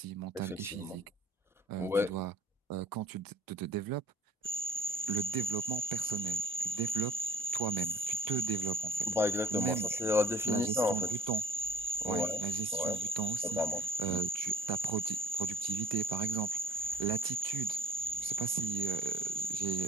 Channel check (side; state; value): both; normal; correlation 0.51